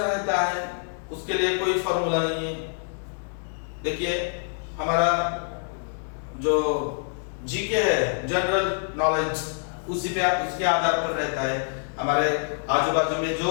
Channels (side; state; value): right; silent; digital silence